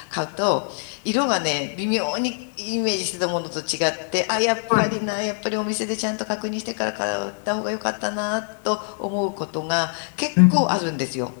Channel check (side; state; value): right; silent; 57 dB below the other